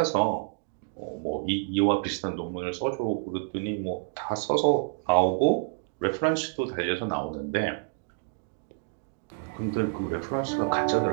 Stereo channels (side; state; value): left; silent; digital silence